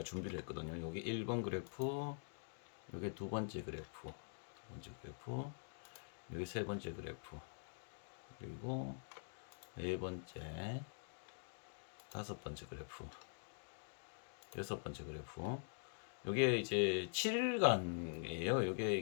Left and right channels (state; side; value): silent; right; digital silence